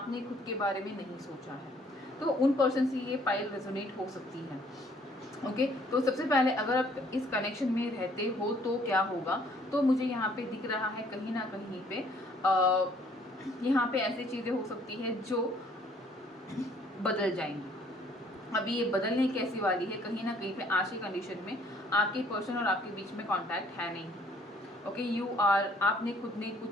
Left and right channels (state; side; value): normal; both; correlation 0.61